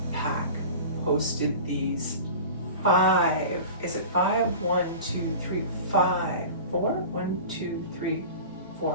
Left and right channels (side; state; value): both; inverted; correlation -0.36